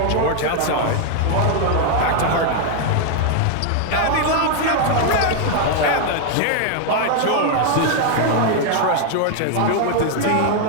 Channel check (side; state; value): both; different; correlation 0.00